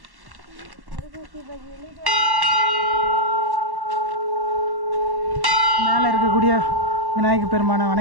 மேலே இருக்கக்கூடிய விநாயகர் பெருமானை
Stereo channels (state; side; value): late; left; 1.1 ms